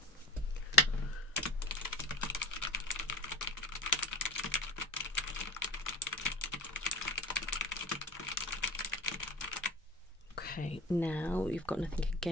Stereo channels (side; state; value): both; normal; correlation 0.36